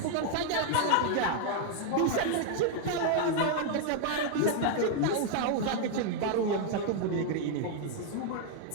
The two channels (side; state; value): both; different; correlation 0.00